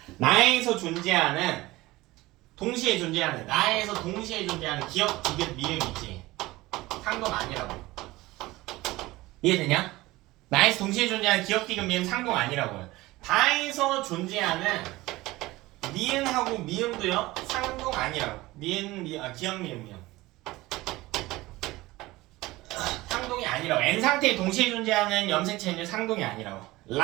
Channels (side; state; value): left; quieter; 19.3 dB